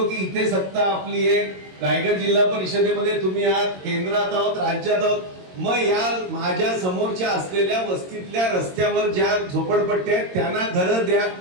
की इथे सत्ता आपली आहे, रायगड जिल्हा परिषदेमध्ये तुम्ही आहात, केंद्रात आहोत, राज्यात आहोत, मग या माझ्या समोरच्या असलेल्या वस्तीतल्या रस्त्यावर ज्या झोपडपट्ट्या आहेत त्यांना घरं द्या,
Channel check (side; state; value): left; late; 22 ms